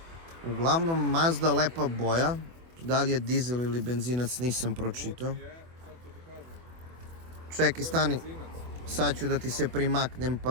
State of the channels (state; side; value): late; left; 24 ms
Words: Uglavnom Mazda lepa boja. Da li je dizel ili benzinac nisam pročitao. Čekaj, stani. Sad ću da ti se primaknem